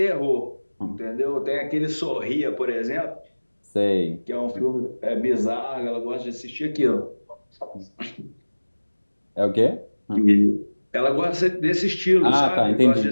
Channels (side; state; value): both; inverted; correlation -1.00